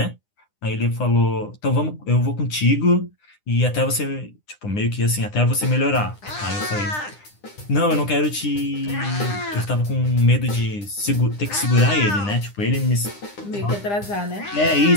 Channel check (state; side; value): late; right; 9.9 ms